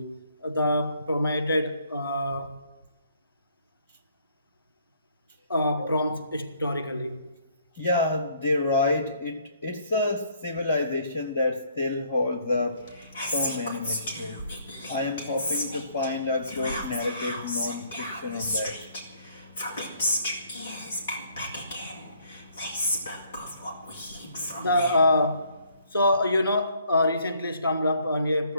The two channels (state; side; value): inverted; both; correlation -0.64